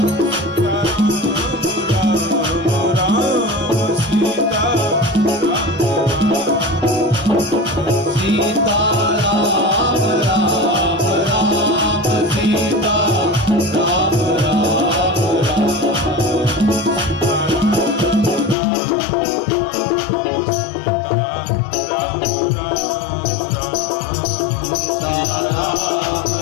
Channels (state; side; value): drops out; right; at 18.6 s